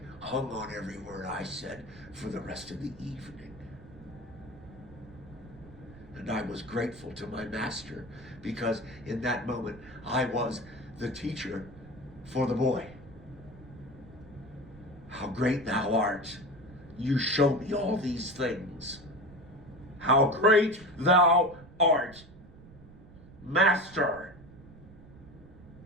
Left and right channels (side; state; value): right; noise; rumble, 19 dB below the sound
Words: hung on every word I said for the rest of the evening. And I was grateful to my master because in that moment I was the teacher for the boy. How great thou art. You show me all these things. How great thou art, Master.